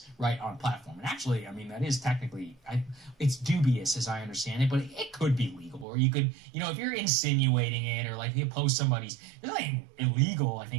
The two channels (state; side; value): drops out; left; at 5.9 s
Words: right, on platform. And actually, I mean, that is technically, it's dubious, as I understand it, but it could be legal. Or you could, you know, if you're insinuating it, or like you post somebody's, there's nothing illegal, I